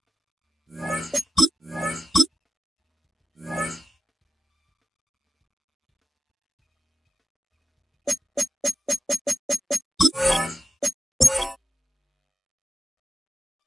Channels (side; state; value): both; normal; correlation 0.93